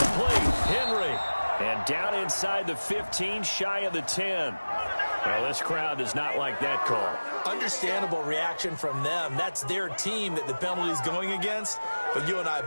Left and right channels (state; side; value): inverted; both; correlation -1.00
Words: Henry. And down inside the 15, shy of the 10. Well, this crowd does not like that call. Understandable reaction from them. That's their team that the penalty's going against. But you and I